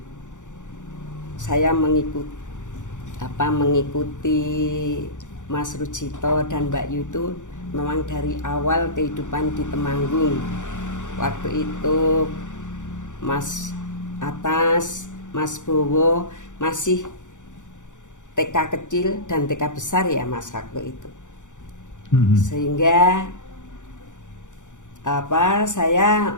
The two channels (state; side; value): late; right; 0.86 ms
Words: saya mengikuti Mas Rujito dan Mbak Yu itu memang dari awal kehidupan di Temanggung. Waktu itu Mas Atas Mas Bowo masih TK kecil dan TK besar ya Mas waktu itu. Sehingga saya